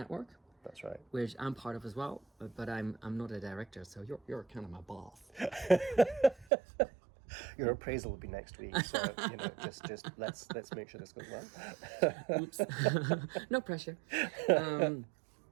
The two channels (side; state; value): left; drops out; at 6.5 s